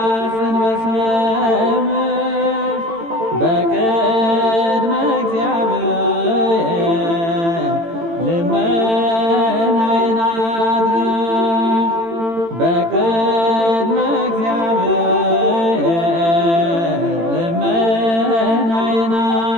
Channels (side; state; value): left; late; 18 ms